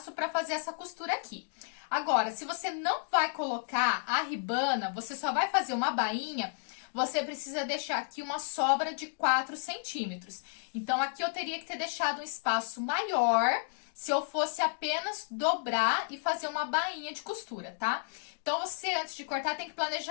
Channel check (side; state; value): right; silent; digital silence